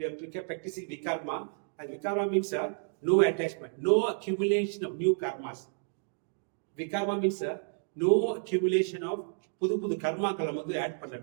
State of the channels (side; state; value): left; silent; digital silence